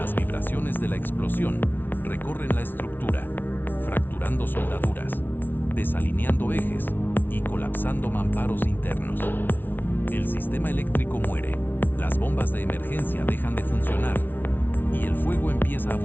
vibraciones de la explosión recorren la estructura, fracturando soldaduras, desalineando ejes y colapsando mamparos internos. El sistema eléctrico muere, las bombas de emergencia dejan de funcionar y el fuego empieza a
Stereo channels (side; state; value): right; late; 0.095 ms